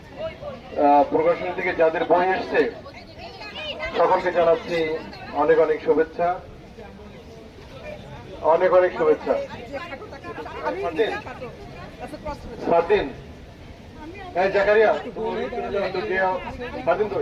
প্রকাশনী থেকে যাদের বই এসছে সকলকে জানাচ্ছি অনেক অনেক শুভেচ্ছা, অনেক অনেক শুভেচ্ছা। স্বাধীন জাকারিয়া স্বাধীন তো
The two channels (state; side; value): identical; both; correlation 1.00